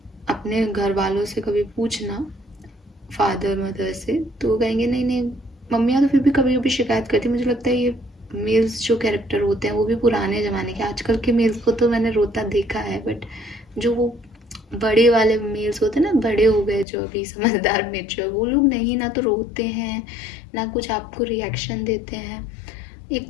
अपने घर वालों से कभी पूछना, फादर मदर से, तो वो कहेंगे नहीं नहीं, मम्मियाँ तो फिर भी कभी कभी शिकायत करती। मुझे लगता है ये मेल्स जो कैरेक्टर होते हैं वो भी पुराने ज़माने के, आजकल के मेल्स को तो मैंने रोता देखा है, बट जो वो बड़े वाले मेल्स होते हैं ना, बड़े हो गए जो अभी समझदार मेच्योर, वो लोग नहीं ना तो रोते हैं ना कुछ आपको रिएक्शन देते हैं,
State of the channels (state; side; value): drops out; right; at 16.9 s